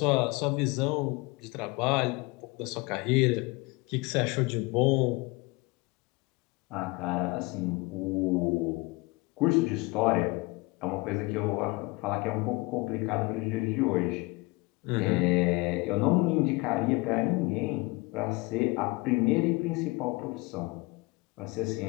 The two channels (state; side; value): quieter; right; 24.7 dB